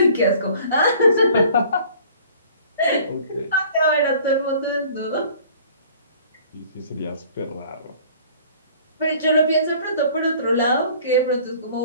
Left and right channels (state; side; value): inverted; both; correlation -0.51